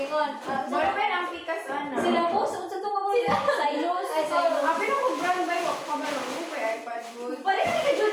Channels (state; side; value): identical; both; correlation 1.00